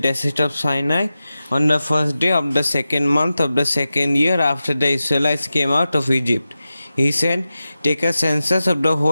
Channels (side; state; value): both; inverted; correlation -0.93